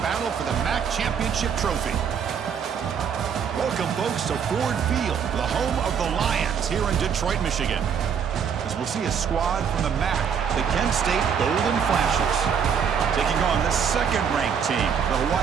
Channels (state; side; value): quieter; left; 7.3 dB